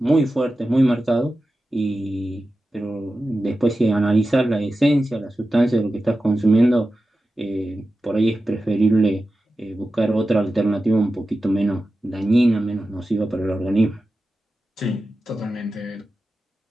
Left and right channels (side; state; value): both; normal; correlation 0.93